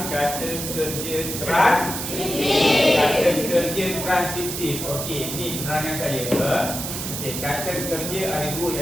kata kerja transitif. Kata kerja transitif. Okey, ini penerangan saya. Okey, kata kerja ada dua,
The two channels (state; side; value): noise; right; hiss, 5 dB below the sound